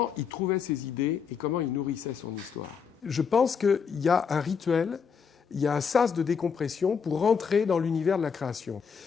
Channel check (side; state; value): right; quieter; 6.4 dB